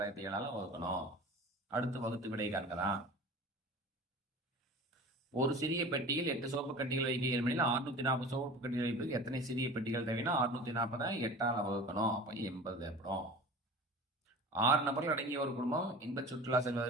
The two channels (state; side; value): normal; both; correlation 0.37